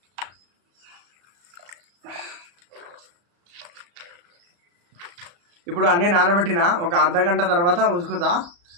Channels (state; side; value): late; left; 35 ms